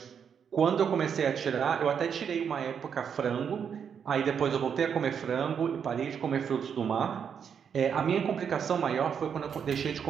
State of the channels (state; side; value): quieter; left; 7.4 dB